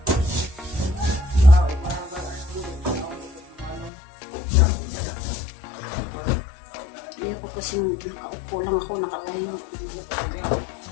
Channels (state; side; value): drops out; right; at 3.9 s